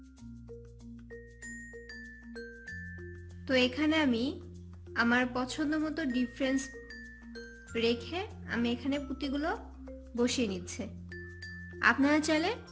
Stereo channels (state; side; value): identical; both; correlation 1.00